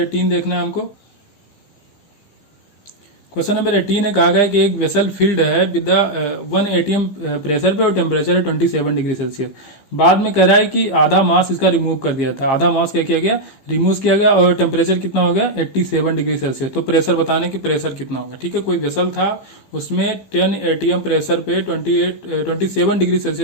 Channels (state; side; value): late; right; 15 ms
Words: देखना है हमको। क्वेश्चन नंबर 18 में कहा गया है कि एक वेसल फिल्ड है विद 1 atm प्रेशर पे और टेम्परेचर है 27 डिग्री सेल्सियस। बाद में कह रहा है कि आधा मास इसका रिमूव कर दिया था, आधा मास क्या किया गया, रिमूव किया गया, और टेम्परेचर कितना हो गया 87 डिग्री सेल्सियस। तो प्रेशर बताने की प्रेशर कितना होगा। ठीक है, कोई वेसल था, उसमें 10 atm प्रेशर पे 27 डिग्री